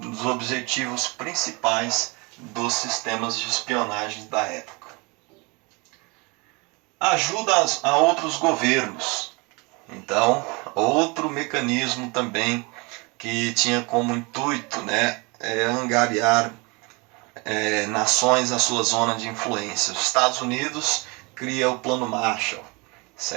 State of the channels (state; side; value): quieter; left; 28.2 dB